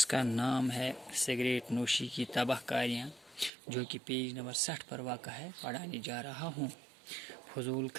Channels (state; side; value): drops out; left; at 3.5 s